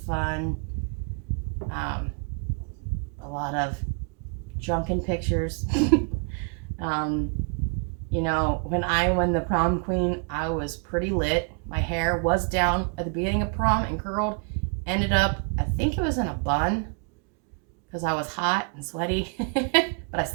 fun, a lot of drunken pictures. When I won the prom queen, I was pretty lit. My hair was down at the beginning of prom and curled. Ended up, I think it was in a bun, because I was hot and sweaty, but I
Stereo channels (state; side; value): quieter; left; 39.6 dB